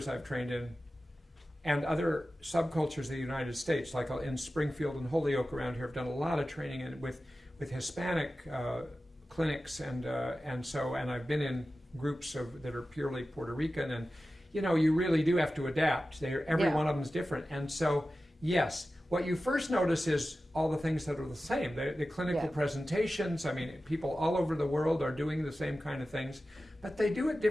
I've trained in, and other subcultures of the United States, like in Springfield and Holyoke around here, I've done a lot of training with Hispanic clinics, and I've been in groups that are purely Puerto Rican, and you really do have to adapt. Every one of them is different, and so yes, what you first notice is all the things that are the same. The clinical presentations. I mean, people all over the world are doing the same kind of things, but they do it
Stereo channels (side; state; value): both; normal; correlation 0.94